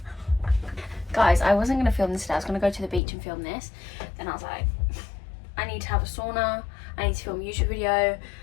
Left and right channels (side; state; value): right; drops out; at 3.0 s